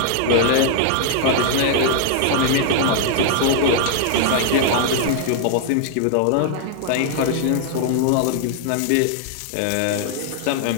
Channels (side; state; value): both; different; correlation 0.00